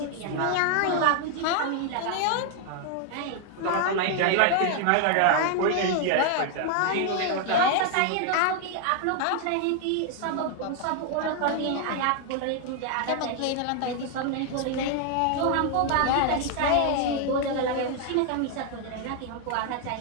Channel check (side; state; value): both; different; correlation 0.00